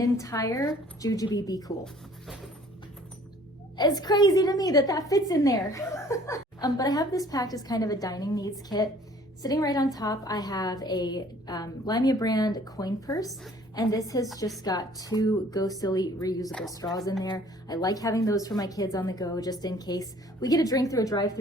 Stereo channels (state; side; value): normal; both; correlation 0.54